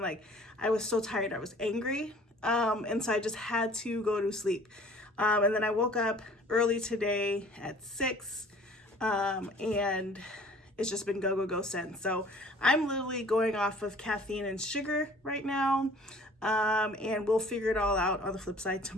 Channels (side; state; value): both; normal; correlation 0.51